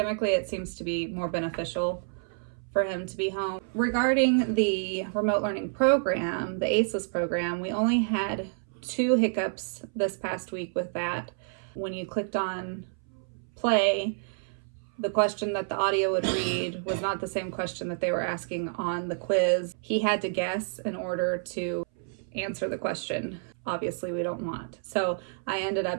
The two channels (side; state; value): left; silent; 59 dB below the other